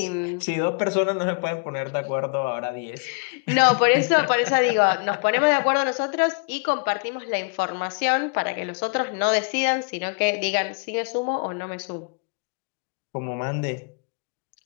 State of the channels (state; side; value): quieter; right; 36.1 dB